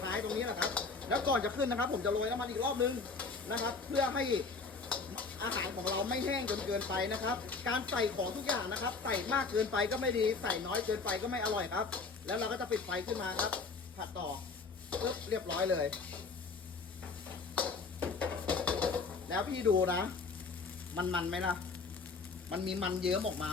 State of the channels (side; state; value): right; quieter; 4.4 dB